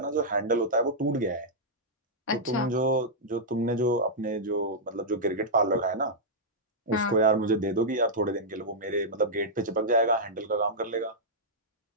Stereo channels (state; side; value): normal; both; correlation -0.09